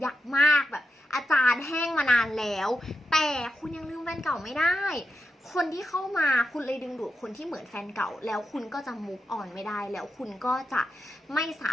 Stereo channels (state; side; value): normal; both; correlation 0.87